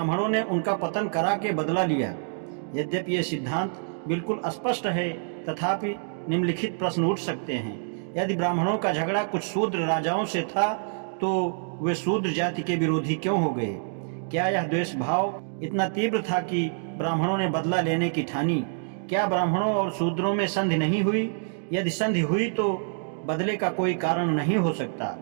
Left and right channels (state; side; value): silent; left; digital silence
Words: ने उनका पतन करा के बदला लिया। यद्यपि यह सिद्धांत बिल्कुल स्पष्ट है, तथापि निम्नलिखित प्रश्न उठ सकते हैं। यदि ब्राह्मणों का झगड़ा कुछ शूद्र राजाओं से था, तो वे शूद्र जाति के विरोधी क्यों हो गए? क्या यह द्वेष भाव इतना तीव्र था कि ब्राह्मणों ने बदला लेने की ठानी? क्या ब्राह्मणों और शूद्रों में संधि नहीं हुई? यदि संधि हुई तो बदले का कोई कारण नहीं हो सकता।